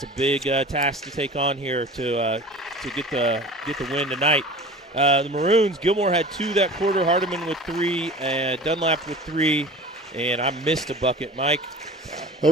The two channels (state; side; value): normal; both; correlation 0.39